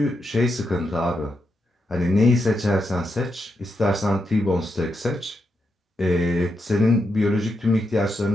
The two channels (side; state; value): both; normal; correlation 0.83